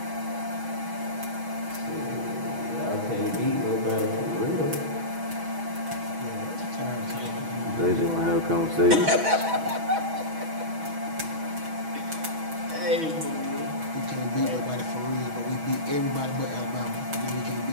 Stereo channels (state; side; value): late; left; 6.2 ms